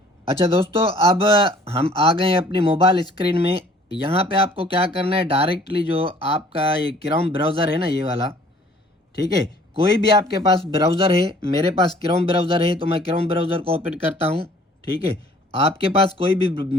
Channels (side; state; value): both; normal; correlation 0.55